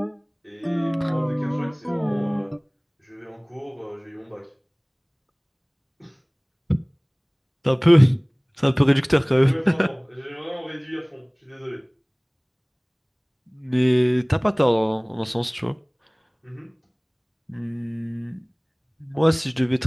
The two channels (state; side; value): identical; both; correlation 1.00